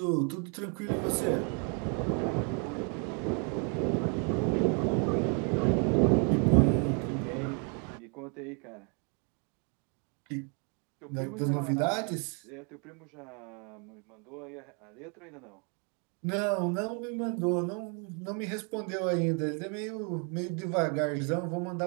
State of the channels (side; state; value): left; quieter; 38.0 dB